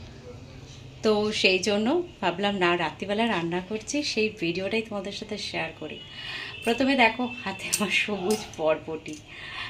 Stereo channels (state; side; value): identical; both; correlation 1.00